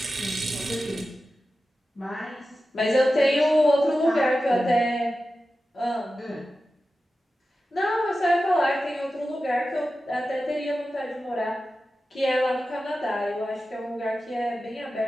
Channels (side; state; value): both; normal; correlation 0.93